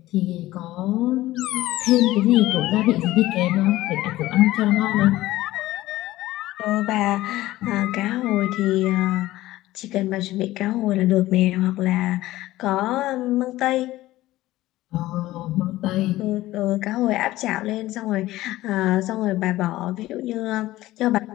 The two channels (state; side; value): quieter; right; 16.5 dB